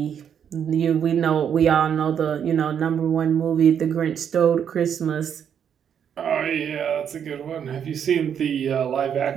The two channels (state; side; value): quieter; left; 8.3 dB